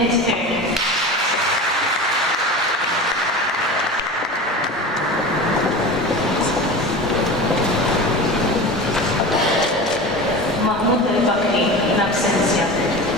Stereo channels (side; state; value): both; normal; correlation 0.31